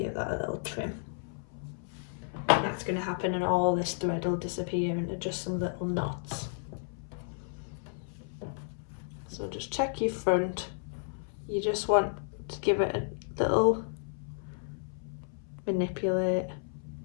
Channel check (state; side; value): silent; right; 56 dB below the other